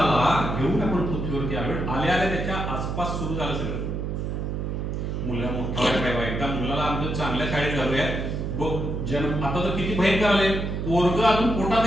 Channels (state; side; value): noise; right; hum, 3 dB below the sound